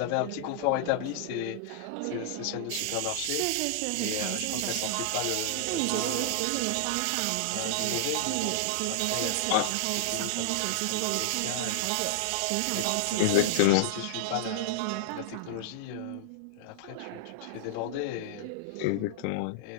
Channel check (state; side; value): different; both; correlation -0.01